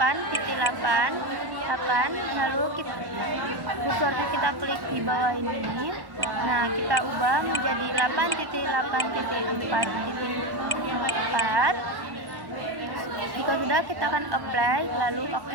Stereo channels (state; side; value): late; left; 1.1 ms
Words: lalu kursornya kita klik di bawah ini. Nah, kita ubah menjadi 8.8.4. Jika sudah, kita akan apply lalu